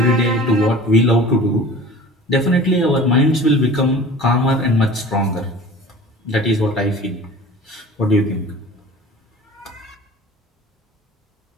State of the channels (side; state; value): both; normal; correlation 0.42